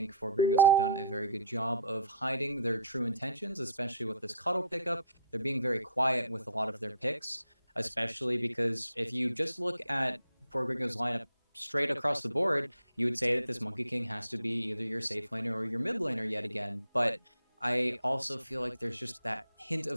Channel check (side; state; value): both; inverted; correlation -0.57